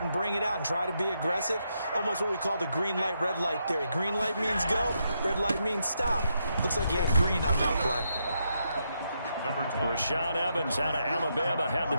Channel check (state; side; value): inverted; both; correlation -0.80